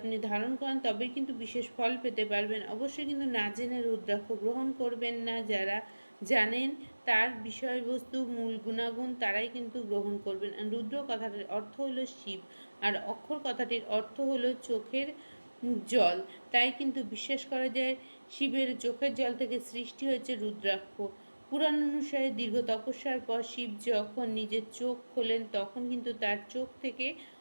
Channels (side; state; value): both; inverted; correlation -1.00